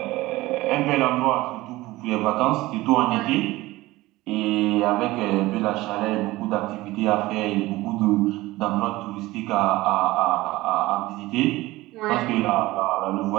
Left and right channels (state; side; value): quieter; left; 18.8 dB